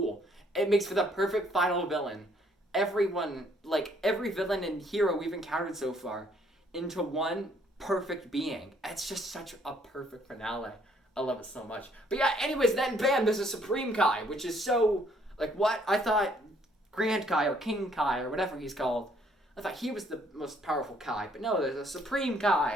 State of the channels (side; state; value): both; normal; correlation 0.65